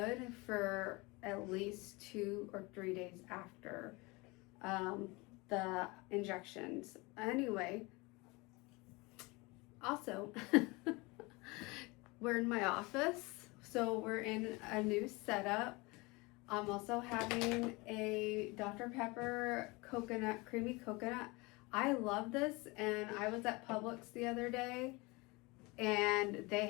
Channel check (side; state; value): right; quieter; 25.2 dB